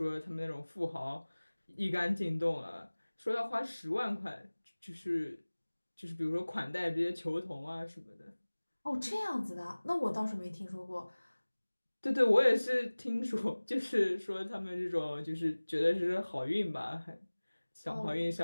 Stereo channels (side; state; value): both; inverted; correlation -1.00